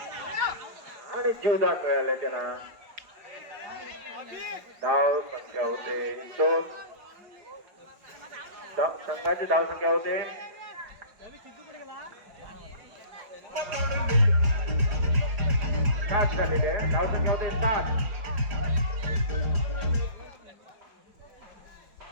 आणि जीवदान मिळाले त्यांना धाव संख्या होते 2 संघाची धाव संख्या होते 7 झालेले आहे धाव संख्या होते 7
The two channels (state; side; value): late; left; 5.2 ms